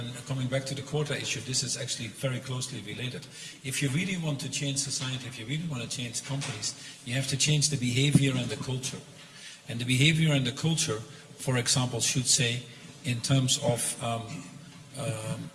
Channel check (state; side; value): identical; both; correlation 1.00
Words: coming back to the quota issue, this is actually very closely related. If you really want to change society, if you really want to change companies, you have to change the behavior and the culture. And the behavior and the culture, for example, should say, in terms of